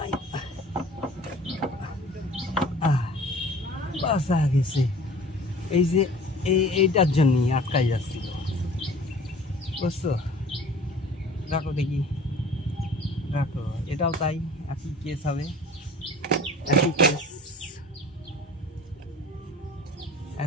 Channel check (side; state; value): both; normal; correlation 0.45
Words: বাসা গেছে। এই যে এইটার জন্যই আটকাই যাচ্ছিল, বুঝছো? রাখো দেখি, রাখো, এটাও তাই, একই কেস হবে, একই কেস,